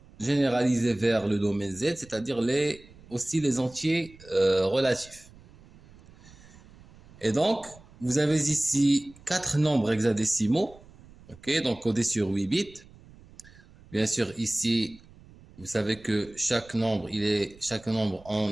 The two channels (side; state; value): right; noise; rumble, 23 dB below the sound